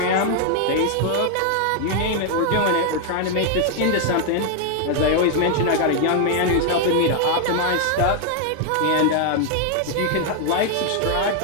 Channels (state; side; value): different; both; correlation 0.00